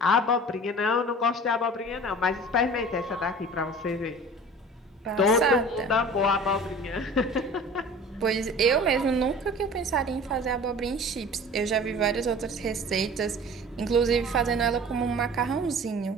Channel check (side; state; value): both; normal; correlation 0.42